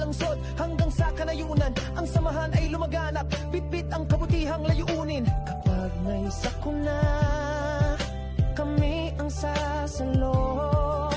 hanggang sa Kanayunan, ang samahan ay lumaganap, bitbit ang kabutihang layunin. Kapag may sakuna, kami ang sasalo.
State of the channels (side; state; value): both; identical; correlation 1.00